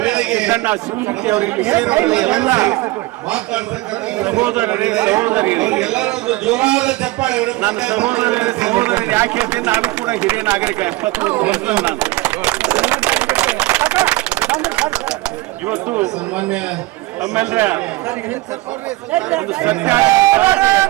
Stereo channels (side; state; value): left; quieter; 19.7 dB